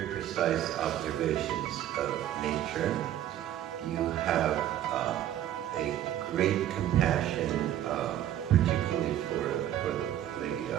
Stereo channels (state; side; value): quieter; left; 12.0 dB